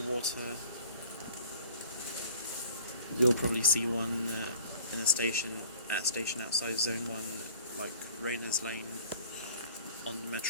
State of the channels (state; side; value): inverted; both; correlation -0.49